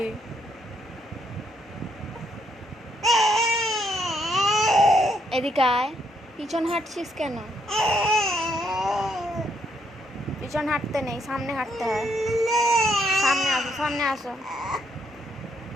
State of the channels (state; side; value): normal; both; correlation 0.73